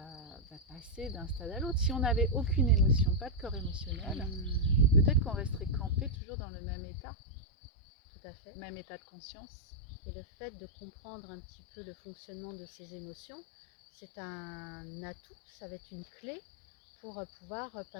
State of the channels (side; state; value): right; drops out; at 6.2 s